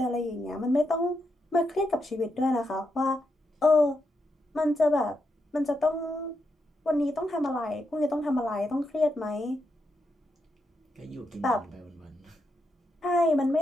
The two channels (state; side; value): normal; both; correlation 0.83